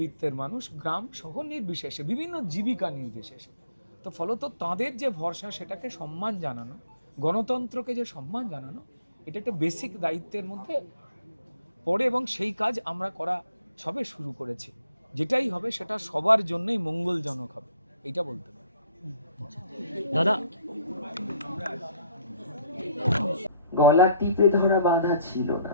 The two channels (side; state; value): both; inverted; correlation -0.63